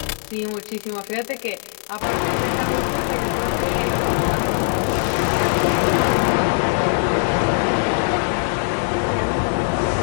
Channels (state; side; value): silent; right; 65 dB below the other